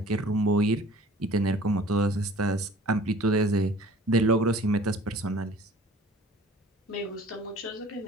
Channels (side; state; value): both; normal; correlation 0.47